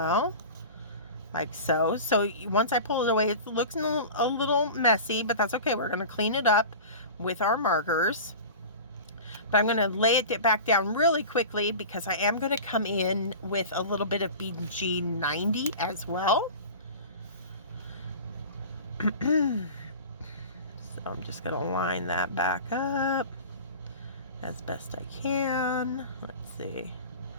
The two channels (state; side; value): inverted; both; correlation -0.35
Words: Like so. So once I pull it away, it looks a little messy, but that's okay. We're going to clean it up with our markers. But I'm going to lay it back down really quickly because I am going to come in with a little bit of BG90 as well. So I'm just going to line that back up as best I can. Let's see.